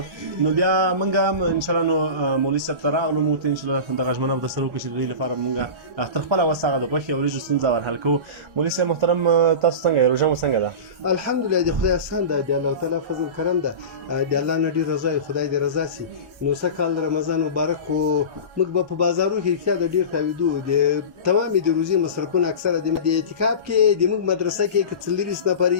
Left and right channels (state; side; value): late; left; 1.4 ms